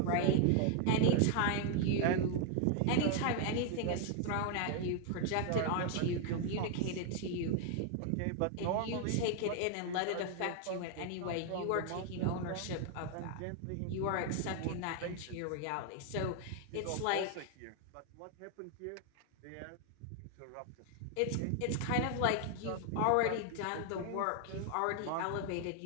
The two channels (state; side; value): different; both; correlation 0.00